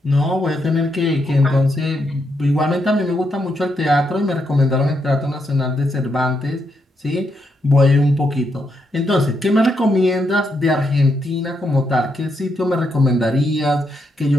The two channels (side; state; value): both; normal; correlation 0.80